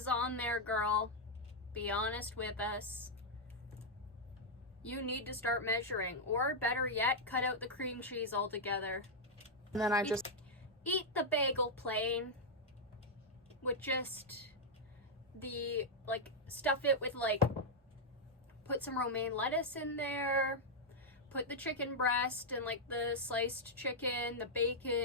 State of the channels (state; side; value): normal; both; correlation -0.03